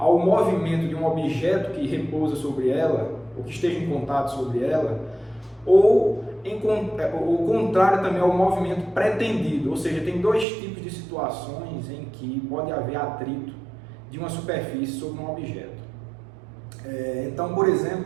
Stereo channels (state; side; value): drops out; left; at 10.5 s